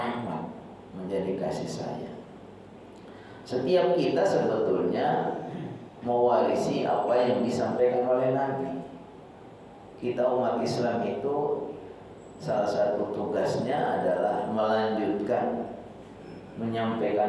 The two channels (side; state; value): both; identical; correlation 1.00